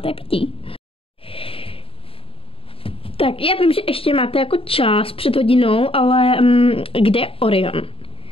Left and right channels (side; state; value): right; late; 0.27 ms